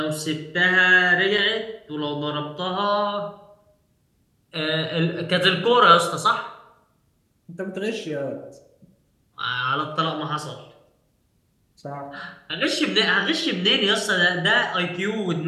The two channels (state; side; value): identical; both; correlation 1.00